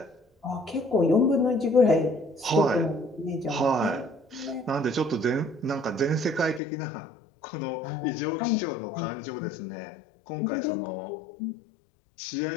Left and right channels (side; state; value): right; drops out; at 6.6 s